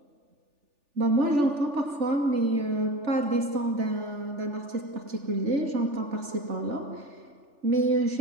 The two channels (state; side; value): late; left; 3.4 ms